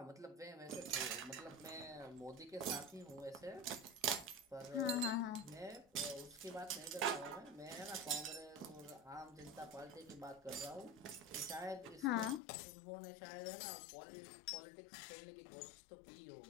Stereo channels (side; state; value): right; drops out; at 12.4 s